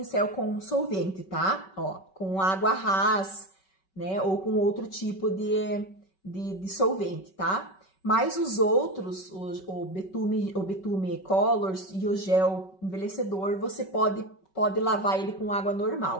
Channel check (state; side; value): late; right; 5.3 ms